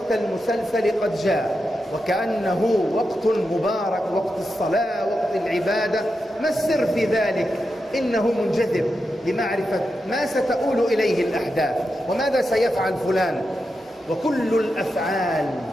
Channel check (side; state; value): both; normal; correlation 0.88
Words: المسلسل قد جاء، وكأنه وقت مبارك، وقت الصلاة، وقت العبادة. ما السر في ذلك؟ إنه منجذب لمعرفة ما ستؤول إليه الأحداث وماذا سيفعل فلان. وكل الأفعال